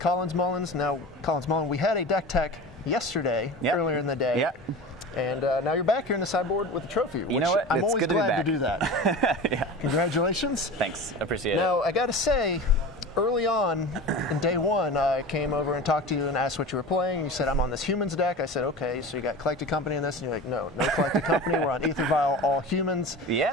Mullins. Now, Collins Mullen, we had a deck tech yesterday, earlier in the day. Yep. And now you're back here in the sideboard with a trophy, which you know what? I'm always glad to do that. Yeah. Congratulations. Thanks. Appreciate it. Now, I got to say, early on in day one, I came over and talked to you and asked what you were playing. You said, I'm on this humans deck. I said, okay, so you got Collected Company in this? And you're like, no Collected Company. We're on Ether Vial, all humans.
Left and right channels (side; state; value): both; normal; correlation 0.32